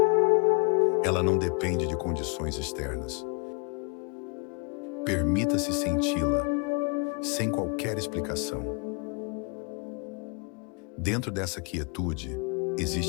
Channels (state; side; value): quieter; right; 33.6 dB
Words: Ela não depende de condições externas. Permita-se senti-la, sem qualquer explicação. Dentro dessa quietude,